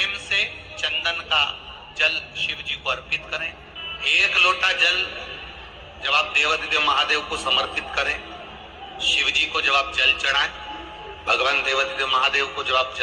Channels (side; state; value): both; identical; correlation 1.00